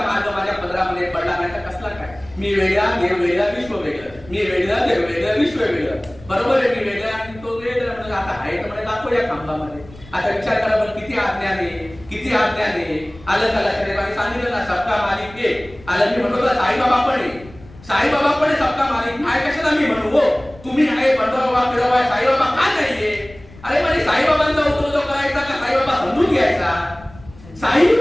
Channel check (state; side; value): noise; left; rumble, 21 dB below the sound